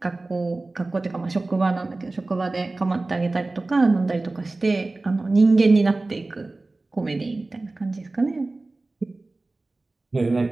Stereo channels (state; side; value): quieter; left; 3.2 dB